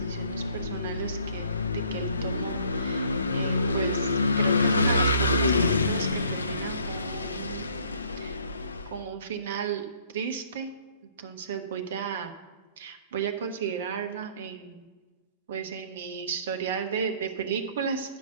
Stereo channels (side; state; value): both; inverted; correlation -0.59